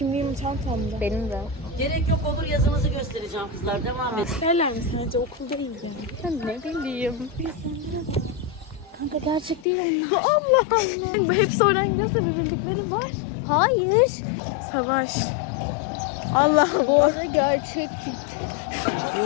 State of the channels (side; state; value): right; drops out; at 9.7 s